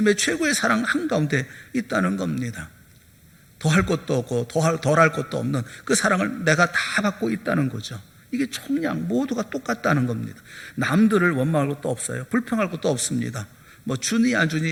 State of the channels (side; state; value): both; identical; correlation 1.00